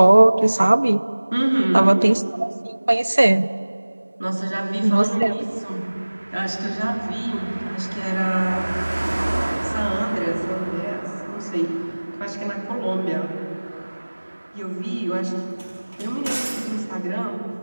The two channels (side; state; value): both; inverted; correlation -1.00